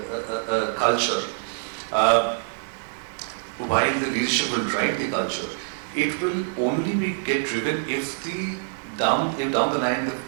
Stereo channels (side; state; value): left; silent; digital silence